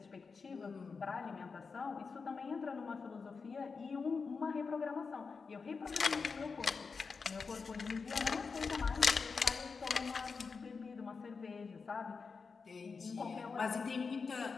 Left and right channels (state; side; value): quieter; right; 4.9 dB